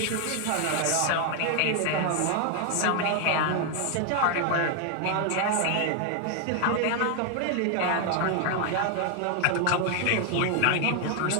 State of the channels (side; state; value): both; different; correlation 0.00